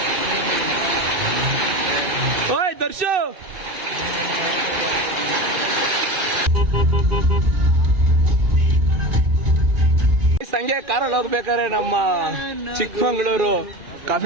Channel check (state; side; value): late; left; 2.4 ms